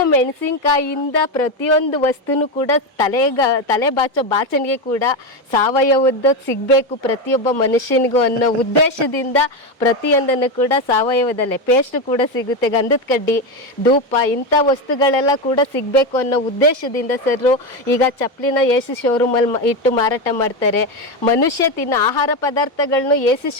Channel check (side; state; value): both; normal; correlation 0.13